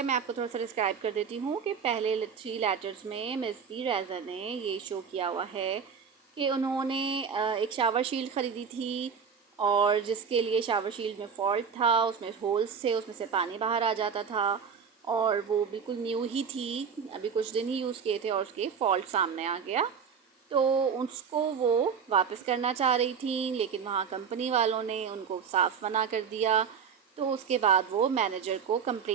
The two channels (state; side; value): quieter; left; 6.7 dB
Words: मैं आपको थोड़ा सा describe कर देती हूँ कि पहले 3 लेटर्स में मिस पी रेज़ा ने ये शो किया हुआ है कि उन्होंने एक शावर शील्ड ख़रीदी थी और जिसके लिए शावर शील्ड में फॉल्ट था, उसमें होल्स थे, उसमें से पानी बाहर आ जाता था और वो बिल्कुल न्यू ही थी, अभी कुछ दिन ही यूज़ किए थे और उसके फॉल्ट सामने आ गया। तो उसको वो वापस करना चाह रही थी, लेकिन वहाँ कंपनी वालों ने उनको साफ मना कर दिया। तो उसके बाद वो मैनेजर को